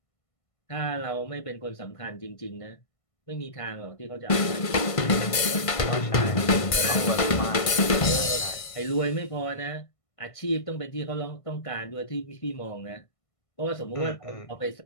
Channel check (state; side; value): late; right; 1.5 ms